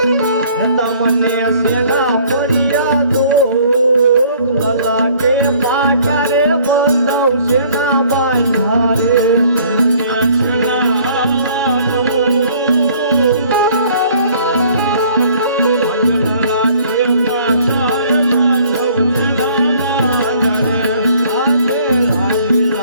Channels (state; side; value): inverted; both; correlation -0.57